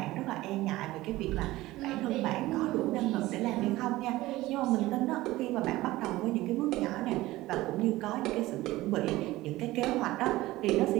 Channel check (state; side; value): quieter; left; 17.8 dB